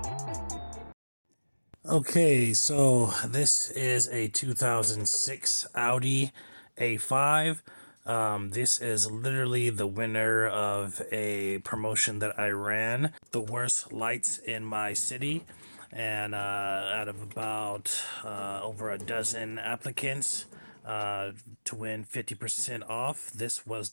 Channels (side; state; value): both; inverted; correlation -1.00